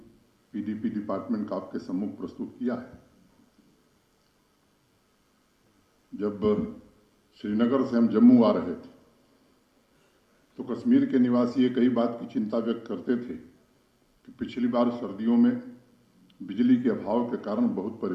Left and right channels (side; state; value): both; identical; correlation 1.00